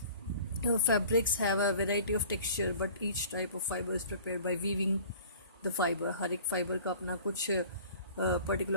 Fabrics have a variety of texture, but each type of fiber is prepared by weaving the fiber. हर एक fibre का अपना कुछ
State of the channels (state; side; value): inverted; both; correlation -0.47